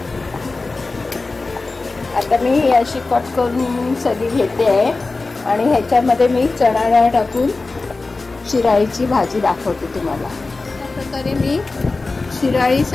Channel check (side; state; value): right; quieter; 3.6 dB